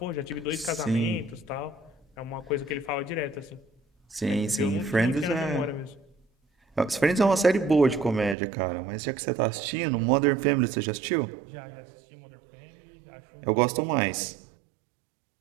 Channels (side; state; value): left; drops out; at 8.3 s